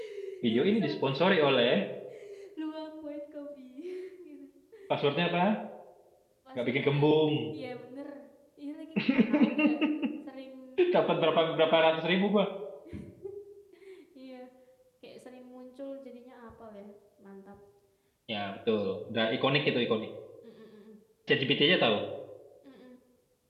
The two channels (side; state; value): both; identical; correlation 1.00